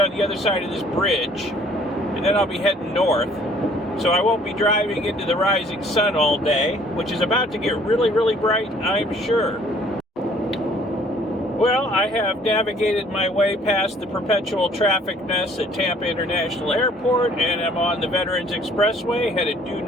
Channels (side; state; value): both; normal; correlation 0.57